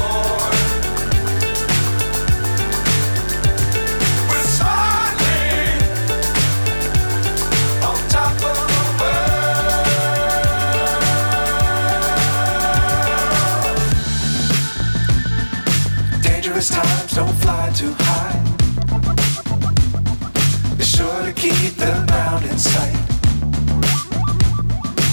Times don't fly too high. Be sure to keep the ground in sight.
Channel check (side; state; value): both; inverted; correlation -1.00